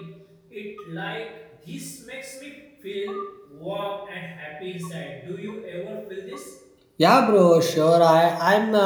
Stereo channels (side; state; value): both; identical; correlation 1.00